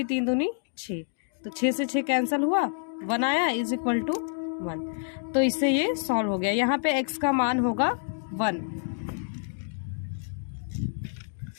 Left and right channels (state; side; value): silent; right; digital silence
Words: 3 दूनी 6, तो 6 से 6 कैंसिल हुआ, 1 आया इज इक्वल टू 1। तो इससे ये सॉल्व हो गया। यहाँ पे x का मान होगा 1।